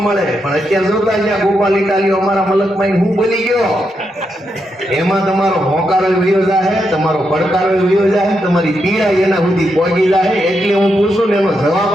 મળે પણ અત્યારે જોતા જ્યાં ગોપાલ ઇટાલીઓ અમારા મલકમાં હું બોલી ગયો, એમાં તમારો હોકારો વયો જાય, તમારો પડકારો વયો જાય, તમારી પીડા એના સુધી પહોંચી જાય. એટલે હું પૂછું ને એનો જવાબ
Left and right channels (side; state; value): both; normal; correlation 0.83